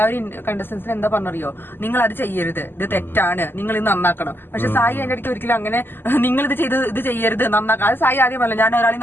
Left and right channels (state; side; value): late; right; 0.099 ms